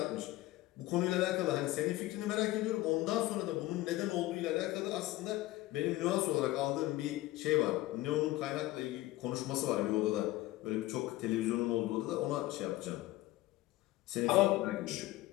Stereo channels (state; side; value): quieter; right; 17.5 dB